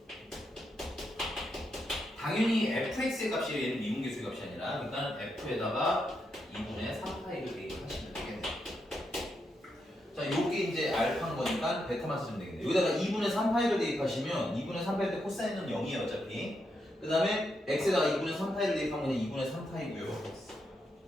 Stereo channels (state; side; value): normal; both; correlation 0.82